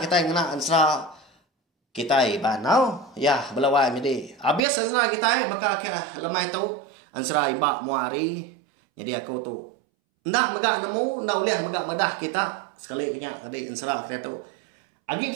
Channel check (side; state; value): left; drops out; at 4.7 s